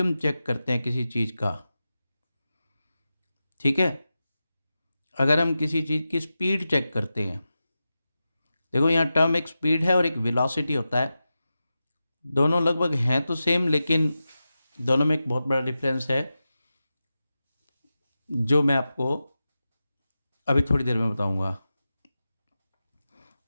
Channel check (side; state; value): both; inverted; correlation -0.93